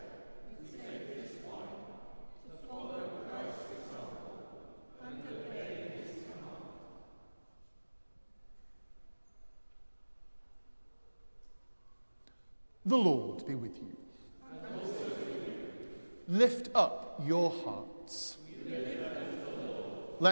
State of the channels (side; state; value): both; inverted; correlation -1.00